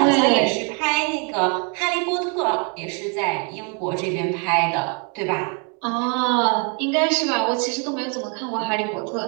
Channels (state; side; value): quieter; left; 36.8 dB